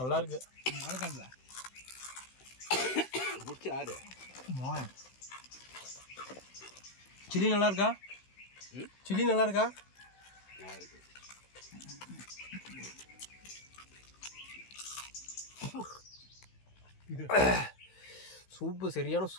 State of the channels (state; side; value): late; right; 16 ms